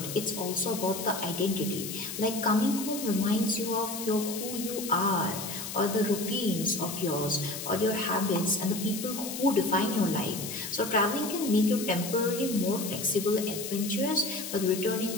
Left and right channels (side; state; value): left; noise; hiss, 7 dB below the sound